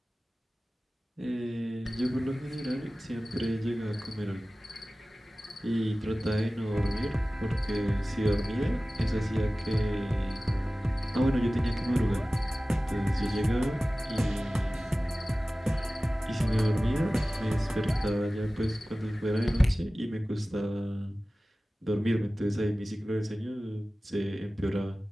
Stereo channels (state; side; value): normal; both; correlation 0.97